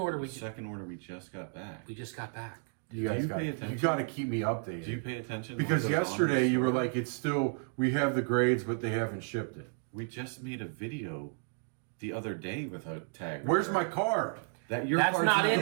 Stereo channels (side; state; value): left; silent; 56 dB below the other